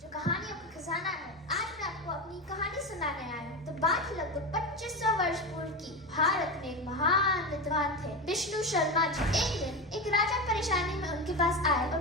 कहानियों का खजाना है। आज मैं आपको अपनी कहानी सुनाने आया हूँ। तो बात लगभग 2500 वर्ष पूर्व की। भारत में एक महान विद्वान थे विष्णु शर्मा जी। एक दिन एक राजा परेशानी में उनके पास आए और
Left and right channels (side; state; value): both; normal; correlation 0.19